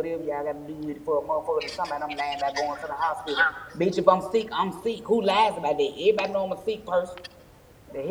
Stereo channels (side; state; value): both; identical; correlation 1.00